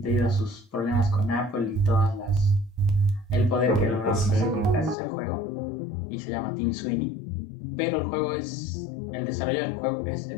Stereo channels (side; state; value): right; drops out; at 5.0 s